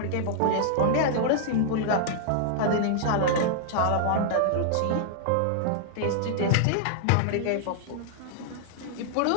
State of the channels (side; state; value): both; different; correlation -0.01